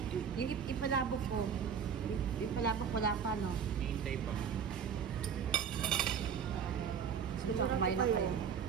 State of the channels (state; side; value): quieter; left; 7.2 dB